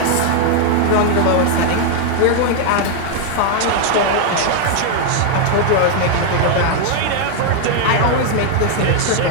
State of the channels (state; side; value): different; both; correlation 0.00